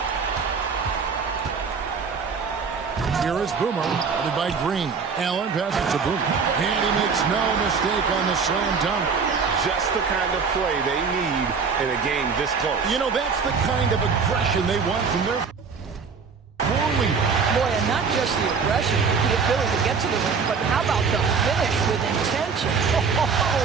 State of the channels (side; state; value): left; quieter; 5.5 dB